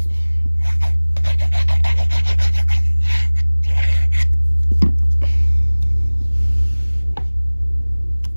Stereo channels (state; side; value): inverted; both; correlation -1.00